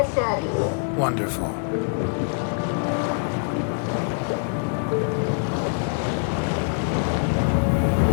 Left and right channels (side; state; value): right; silent; 62 dB below the other